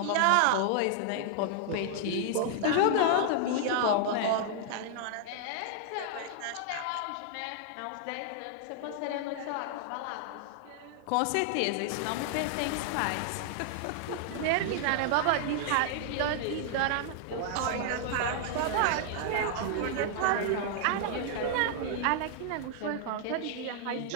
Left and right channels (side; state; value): both; different; correlation -0.01